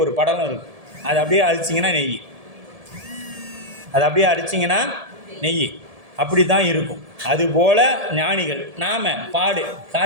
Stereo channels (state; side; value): late; left; 1.7 ms